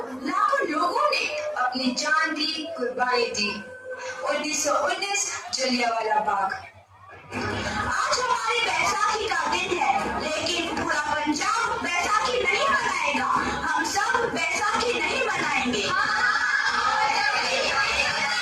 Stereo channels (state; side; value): identical; both; correlation 1.00